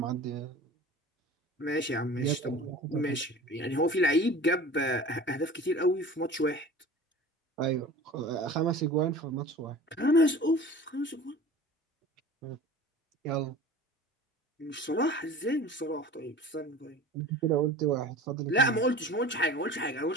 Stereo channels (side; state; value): both; normal; correlation 0.40